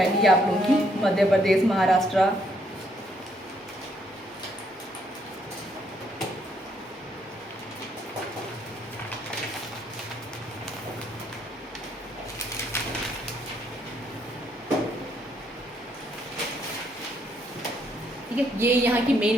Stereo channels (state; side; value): normal; both; correlation 0.71